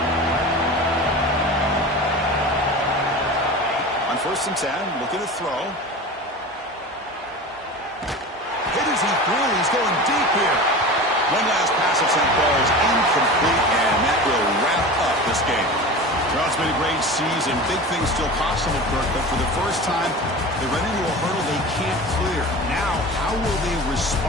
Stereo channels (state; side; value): normal; both; correlation 0.33